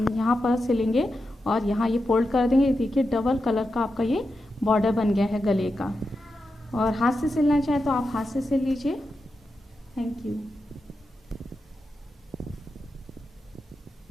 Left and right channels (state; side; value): normal; both; correlation 0.88